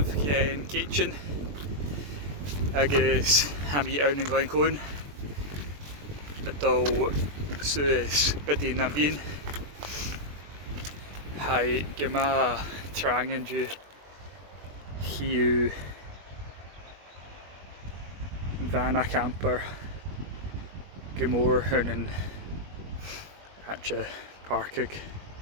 in kitchen. Agus hami own in Glencoe. Ito sues Bidean na Bian. Hi gema trangen ju hiu vana camper gemor hunnen atje parkig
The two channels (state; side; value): late; left; 21 ms